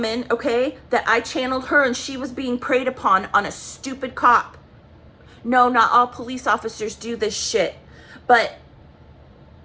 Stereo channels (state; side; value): identical; both; correlation 1.00